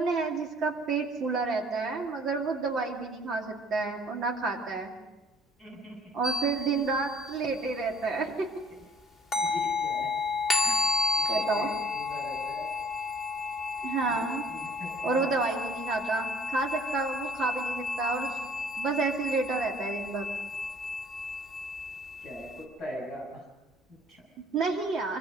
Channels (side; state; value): both; normal; correlation 0.56